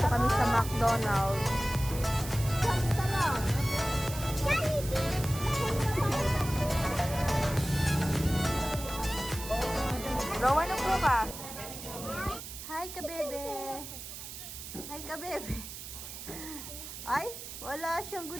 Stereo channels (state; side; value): noise; right; hiss, 10 dB below the sound